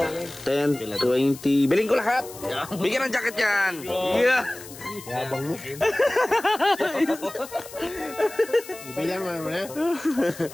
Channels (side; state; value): left; noise; hiss, 16 dB below the sound